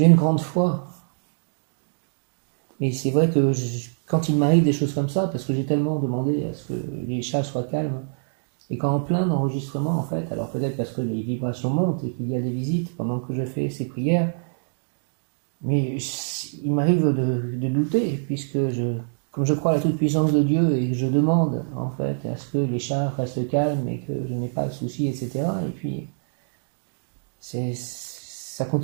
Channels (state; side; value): silent; left; digital silence